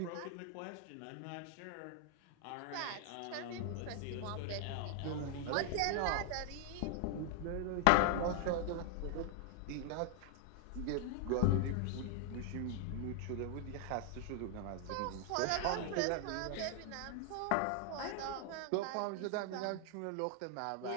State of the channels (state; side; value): different; both; correlation 0.00